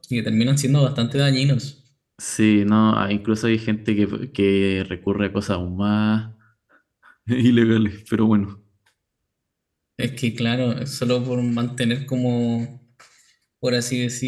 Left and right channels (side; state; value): both; identical; correlation 1.00